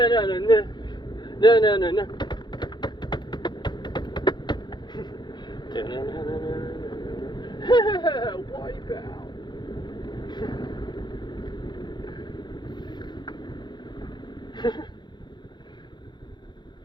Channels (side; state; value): right; late; 0.21 ms